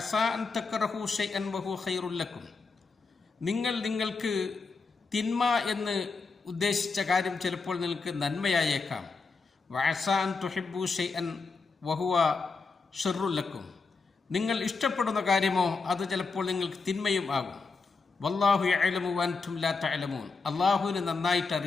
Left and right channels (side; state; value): right; quieter; 4.4 dB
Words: അൻ തക്റഹു ശൈഅൻ വഹുവ ഖൈറുൽ ലക്കും. നിങ്ങൾക്ക് തിന്മ എന്ന് ഉദ്ദേശിച്ച കാര്യം ചിലപ്പോൾ നിങ്ങൾക്ക് നന്മയായേക്കാം. വഅസാ അൻ തുഹിബ്ബു ശൈഅൻ വഹുവ ശർറുൽ ലക്കും. നിങ്ങൾ ഇഷ്ടപ്പെടുന്ന കാര്യമോ അത് ചിലപ്പോൾ നിങ്ങൾക്ക് തിന്മയും ആകും. വല്ലാഹു യഅലമു വഅൻതും ലാ തഅലമൂൻ. അല്ലാഹുവിന് നന്നായിട്ട്